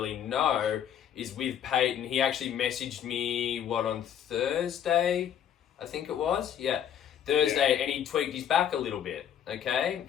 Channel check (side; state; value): right; quieter; 9.4 dB